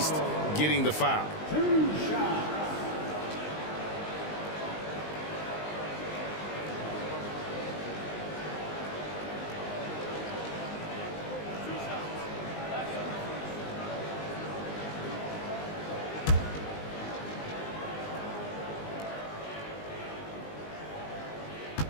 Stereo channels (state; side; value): late; right; 19 ms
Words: getting the foul.